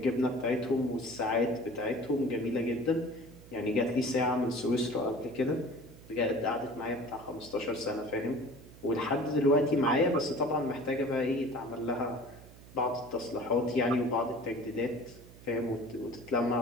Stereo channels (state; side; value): noise; right; hum, 20 dB below the sound